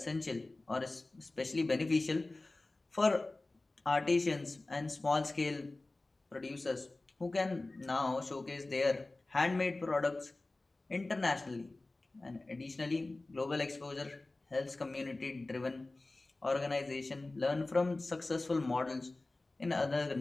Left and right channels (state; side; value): quieter; right; 3.0 dB